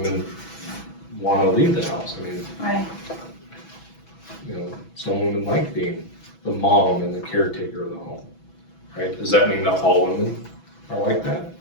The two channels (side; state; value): right; late; 6.1 ms